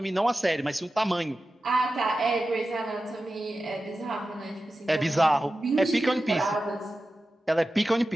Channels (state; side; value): normal; both; correlation 0.93